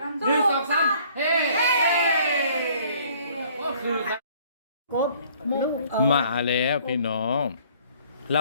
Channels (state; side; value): inverted; both; correlation -0.58